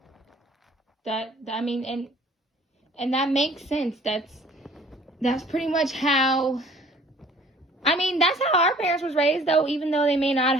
I mean, and that makes sense. That's pretty much how. I mean, that's how our parents was raised, though, even though they may not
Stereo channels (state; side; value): normal; both; correlation 0.53